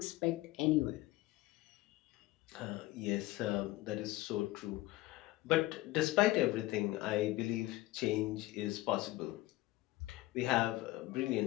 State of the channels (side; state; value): right; quieter; 18.4 dB